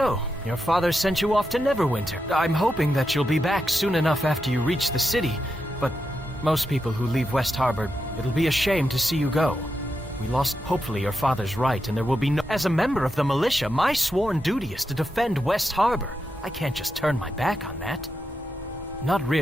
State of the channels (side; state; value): both; normal; correlation 0.86